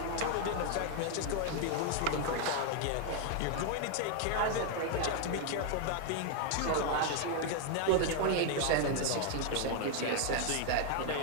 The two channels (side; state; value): both; different; correlation 0.00